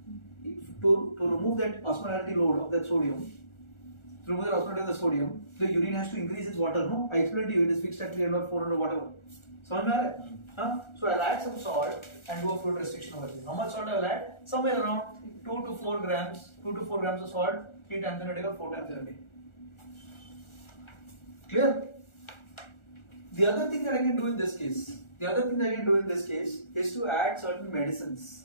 To remove that osmolarity load of that sodium, to remove the osmolarity of the sodium, the urine has to increase its water. No, I explained to you it is fixed at 300, 400, whatever. समझ में आ रहा है? So I'll add some salt and do a fluid restriction over here. How much salt I will add? Somewhere around 2 to 4 grams. 2 to 4 grams of salt 3 times in a day or 4 times in a day. Clear? The other thing that I can do in this case, is to add certain medicines.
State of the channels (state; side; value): late; right; 1.4 ms